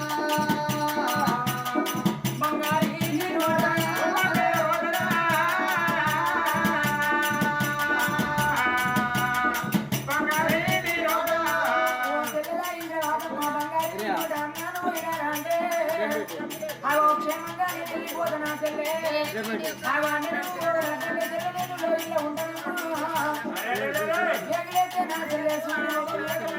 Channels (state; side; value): identical; both; correlation 1.00